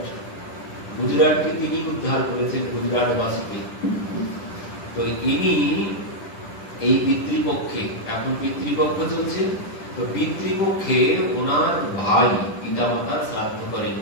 গুজরাটকে তিনি উদ্ধার করেছেন, গুজরাটবাসীকে। তো ইনি এই পিতৃপক্ষে, এখন পিতৃপক্ষ চলছে, তো পিতৃপক্ষে ওনার ভাই পিতামাতার শ্রাদ্ধ করেন,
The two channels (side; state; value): right; late; 10 ms